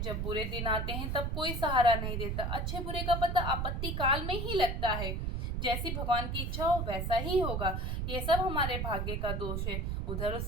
जब बुरे दिन आते हैं तब कोई सहारा नहीं देता। अच्छे बुरे का पता आपत्ति काल में ही लगता है। जैसी भगवान की इच्छा हो वैसा ही होगा। ये सब हमारे भाग्य का दोष है। उधर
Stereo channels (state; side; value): noise; right; rumble, 1 dB below the sound